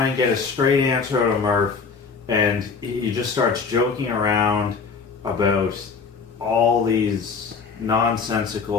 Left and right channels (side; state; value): right; quieter; 5.2 dB